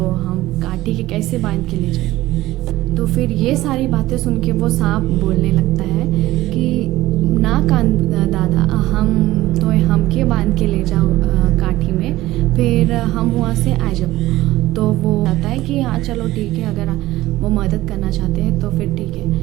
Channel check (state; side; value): quieter; left; 16.7 dB